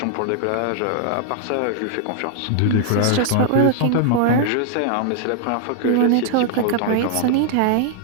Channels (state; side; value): different; both; correlation -0.01